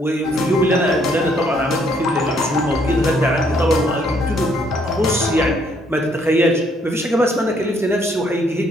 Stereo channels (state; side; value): normal; both; correlation 0.68